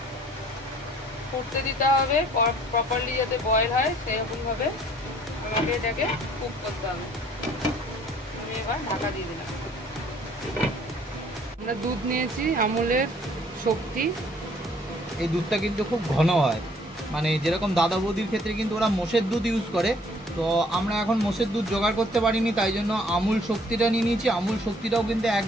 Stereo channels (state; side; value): normal; both; correlation 0.59